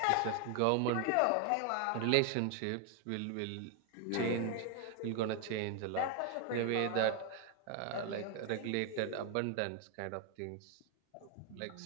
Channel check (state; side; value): different; both; correlation 0.01